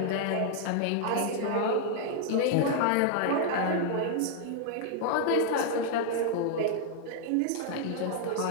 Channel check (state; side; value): different; both; correlation -0.01